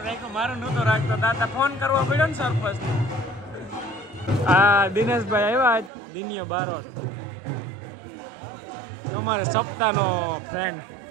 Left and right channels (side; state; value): left; drops out; at 5.9 s